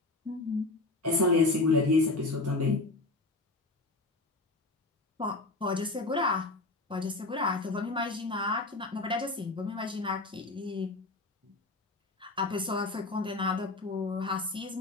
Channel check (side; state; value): right; quieter; 3.1 dB